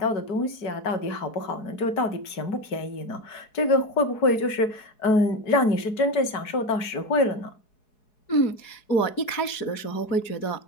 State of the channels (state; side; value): late; right; 4.7 ms